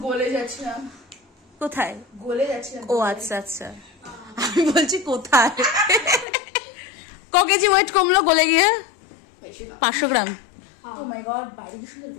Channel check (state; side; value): drops out; right; at 6.2 s